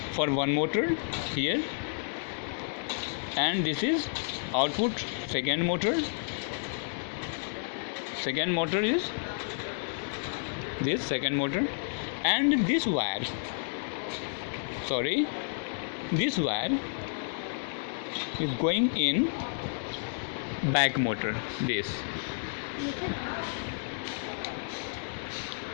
for one motor here, and this is output second motor is this second motor, and this wire is going in back motor, this.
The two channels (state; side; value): silent; right; digital silence